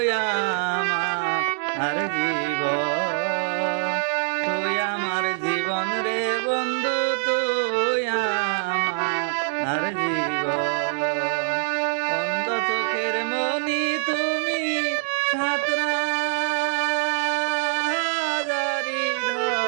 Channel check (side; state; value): left; silent; digital silence